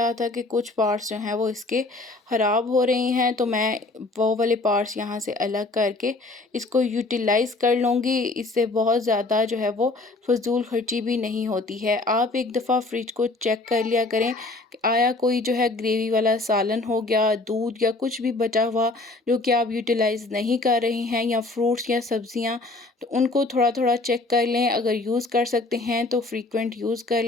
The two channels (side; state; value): right; quieter; 3.2 dB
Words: था कि कुछ पार्ट्स जो हैं वो इसके ख़राब हो रहे हैं, तो मैं वो वाले पार्ट्स यहाँ से अलग करके इसको यूटिलाइज़ कर लूँगी। इससे बहुत ज़्यादा जो है वो फ़िज़ूल खर्ची भी नहीं होती है। आप एक दफ़ा फ्रिज को चेक कर लिया करें कि आया कोई जो है ग्रेवी वाला सालन हो गया, दूध या कुछ भी बचा हुआ जो कि आप यूटिलाइज़ नहीं कर रहे हैं, या फ्रूट्स या सब्ज़ियाँ, तो उनको थोड़ा-थोड़ा चेक कर लें। अगर यूज़ कर सकते हैं तो फ्रीक्वेंट यूज़ कर